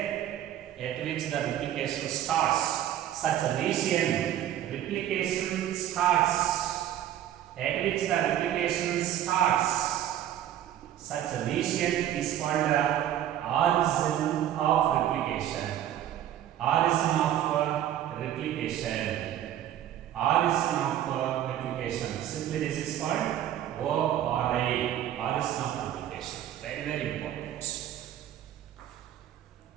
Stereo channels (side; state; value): left; quieter; 11.5 dB